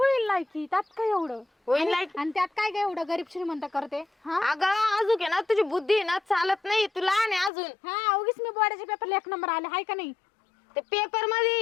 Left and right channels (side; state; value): right; drops out; at 7.5 s